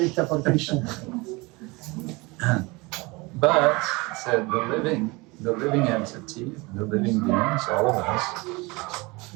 por Krishna. But said the living entity, the living beings, all of us,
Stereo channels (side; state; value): left; quieter; 24.8 dB